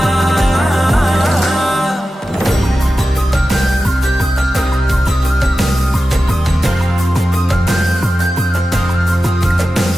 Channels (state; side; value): normal; both; correlation 0.93